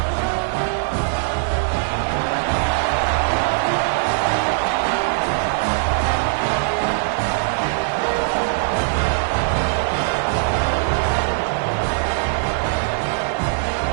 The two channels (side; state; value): left; silent; digital silence